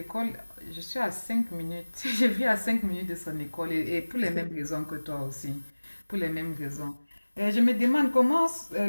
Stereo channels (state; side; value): inverted; both; correlation -1.00